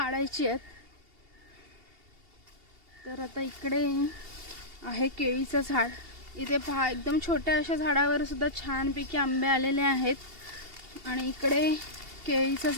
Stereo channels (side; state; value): left; late; 2.8 ms